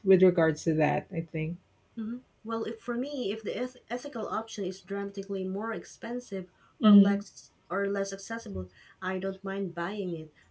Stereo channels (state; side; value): identical; both; correlation 1.00